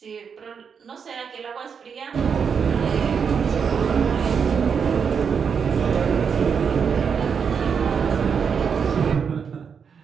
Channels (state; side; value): quieter; left; 6.5 dB